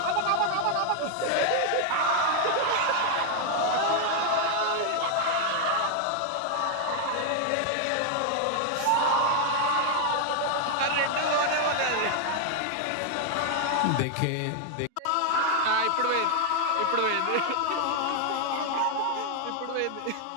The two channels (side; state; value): both; different; correlation 0.00